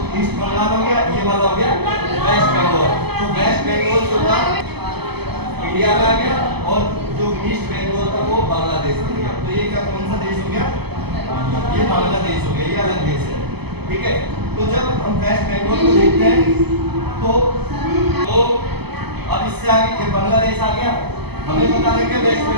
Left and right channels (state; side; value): late; left; 0.97 ms